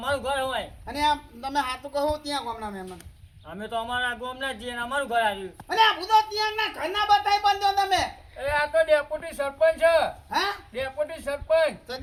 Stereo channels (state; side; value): identical; both; correlation 1.00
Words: ઘર હોય અને આ તમે હાથું કહો ત્યાં ગામના મહેમાન અમે તો અમારા ગામના જ છીએ ને અમારું ઘર આવ્યું અને આ બુધો ત્યાં ના ઘરના બતાઈ બંધો તમે એ આ તો ડેપ્યુટી સરપંચ છે હા ડેપ્યુટી સરપંચ તો